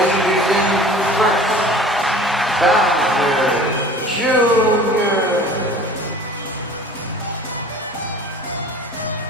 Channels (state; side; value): normal; both; correlation 0.44